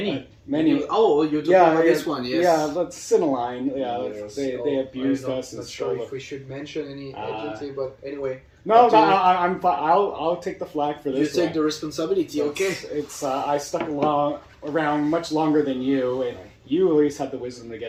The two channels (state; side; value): identical; both; correlation 1.00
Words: Many. Oh, you're talking about this one, yes. Yeah, let's Cineline. Yeah, Yes. they abused us. I'm and not sure stole if we should mention any agency, but anyway. No, I'm fine. I'll take the flag for this. You take the responsibility, okay? It's I stuck around much longer than you, and you at least had the wisdom to